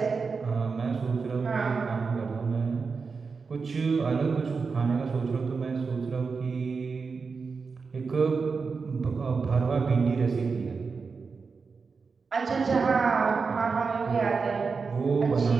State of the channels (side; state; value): left; quieter; 4.9 dB